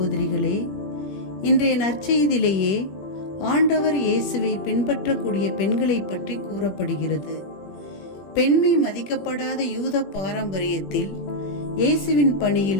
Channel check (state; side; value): late; right; 21 ms